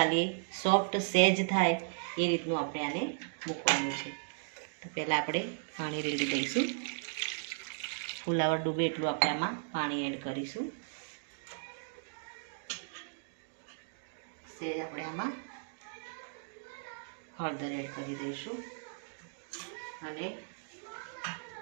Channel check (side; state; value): left; silent; digital silence